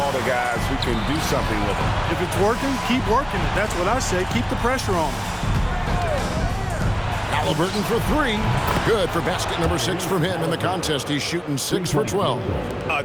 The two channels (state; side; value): identical; both; correlation 1.00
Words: to guys who can do something with it. If it's working, keep working it. That's what I say. Keep the pressure on. Halliburton for 3. Good for basket number 6 from him in the contest. He's shooting 6 for 12. A